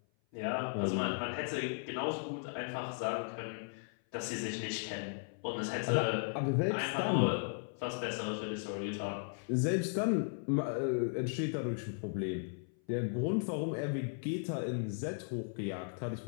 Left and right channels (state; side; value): silent; right; 54 dB below the other